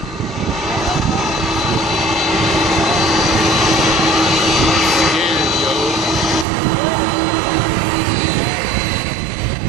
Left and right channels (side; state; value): left; drops out; at 6.5 s